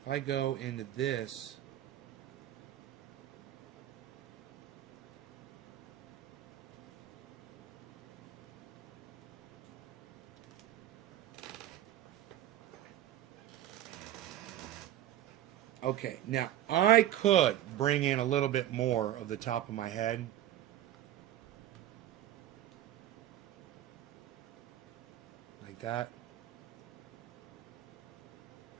If I go into this... Okay, now I could bring in a little bit more of the top of my head. Like that.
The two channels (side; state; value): left; quieter; 12.6 dB